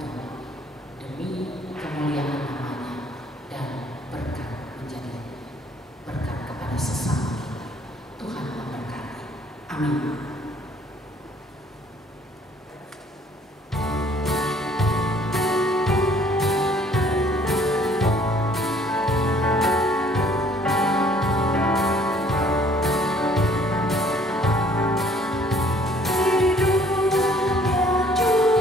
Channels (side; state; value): both; normal; correlation 0.59